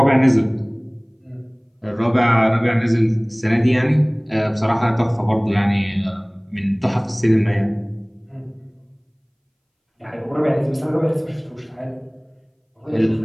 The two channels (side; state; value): both; identical; correlation 1.00